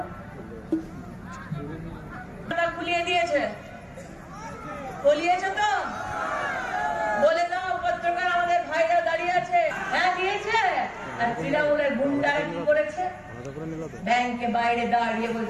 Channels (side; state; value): both; identical; correlation 1.00